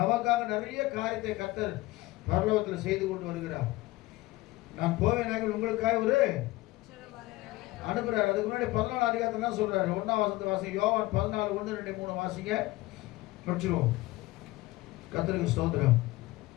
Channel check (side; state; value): right; quieter; 19.2 dB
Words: நிறைய காரியத்தை கர்த்தர் பரலோகத்தில் செய்து கொண்டு வருகிறார். நான் போவேன் உங்களுக்காக ஒரு அனுப்புறாரு. அதுக்கு முன்னாடி 14 அதிகாரத்துல தான் சொல்றாரு. 1ஆம் வசனத்தை வாசிங்க. யோவான் 14 1 2 3 வாசிங்க, படிச்சிருவோம். கர்த்தருக்கு ஸ்தோத்திரம்.